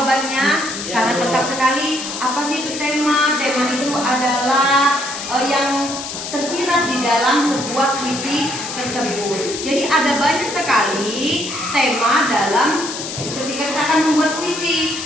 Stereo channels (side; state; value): left; noise; hiss, 7 dB below the sound